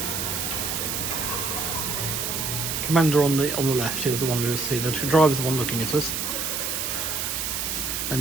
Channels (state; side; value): noise; right; hiss, 2 dB below the sound